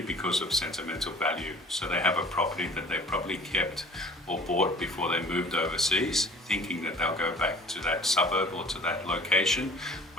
because of sentimental value. So they have a property that they probably kept or bought before they moved overseas, thinking that they'll go back to that suburb or to that location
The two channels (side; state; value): both; normal; correlation 0.48